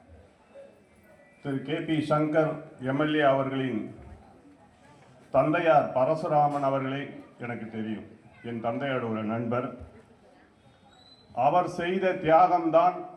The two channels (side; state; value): both; identical; correlation 1.00